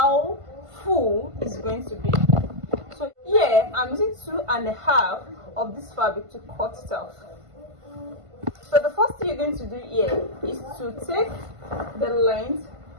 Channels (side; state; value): left; late; 1.5 ms